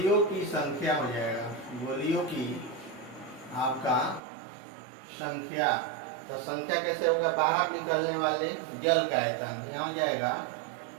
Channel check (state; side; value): drops out; left; at 4.2 s